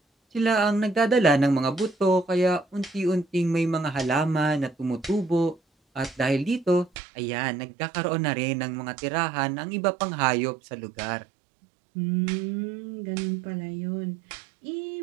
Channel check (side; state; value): left; drops out; at 6.9 s